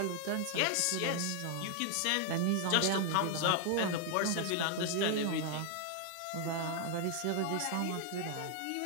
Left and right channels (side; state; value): both; different; correlation 0.00